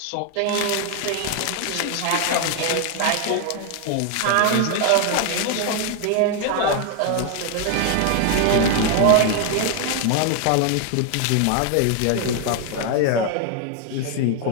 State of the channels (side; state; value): both; different; correlation 0.01